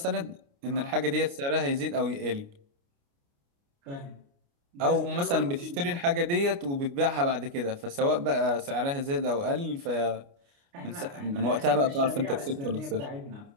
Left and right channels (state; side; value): late; left; 29 ms